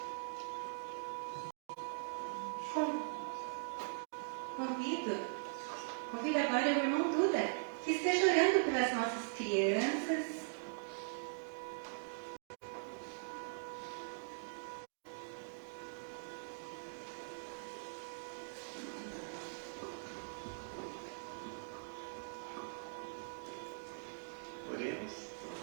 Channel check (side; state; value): left; silent; digital silence